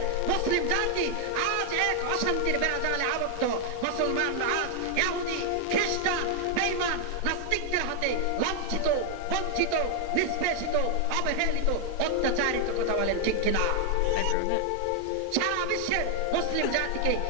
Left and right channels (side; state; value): both; different; correlation 0.00